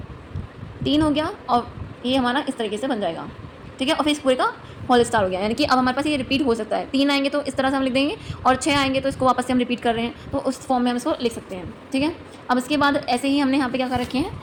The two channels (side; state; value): both; identical; correlation 1.00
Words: 3 हो गया और ये हमारा इस तरीके से बन जाएगा। ठीक है, और फिर इस पूरे का होल स्टार हो गया, यानी कि अब हमारे पास ये रिपीट हो सकता है। 3 आएंगे तो इस तरह से हम लिख देंगे और 6 आएंगे तो इसको वापस से हम रिपीट कर रहे हैं तो उस फॉर्म में हम इसको लिख सकते हैं। ठीक है, अब इसके बाद ऐसे ही हमने यहाँ पे क्या कर रखे